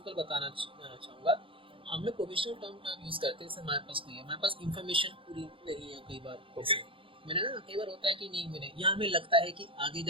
बताना चाहूँगा। हम लोग प्रोविजनल टर्म यूज करते हैं, जैसे हमारे पास नहीं है, हमारे पास इंफॉर्मेशन पूरी नहीं है कई बार। ओके, मैंने ना कई बार होता है कि नहीं मिले, या हमें लगता है कि आगे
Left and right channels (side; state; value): left; late; 0.25 ms